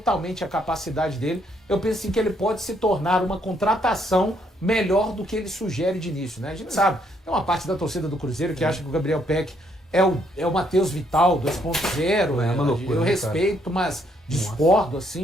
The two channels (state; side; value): normal; both; correlation 0.71